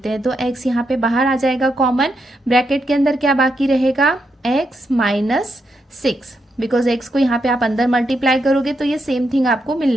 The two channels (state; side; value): normal; both; correlation 0.82